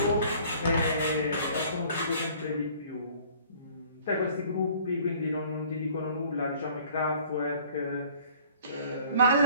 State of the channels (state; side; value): inverted; both; correlation -0.53